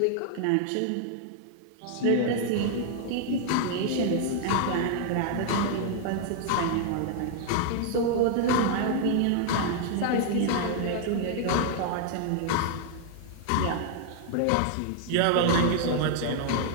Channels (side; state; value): both; different; correlation 0.00